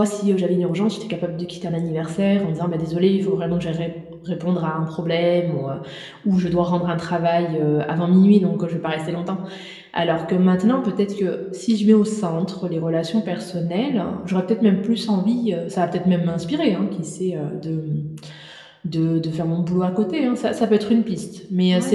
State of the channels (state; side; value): identical; both; correlation 1.00